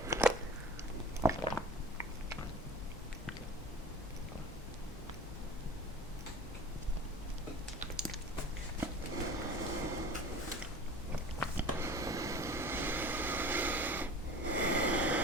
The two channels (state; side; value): normal; both; correlation 0.39